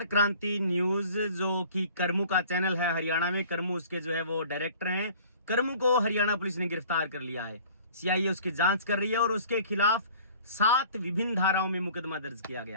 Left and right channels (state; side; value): inverted; both; correlation -0.49